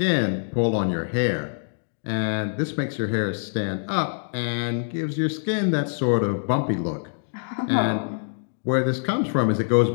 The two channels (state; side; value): silent; right; digital silence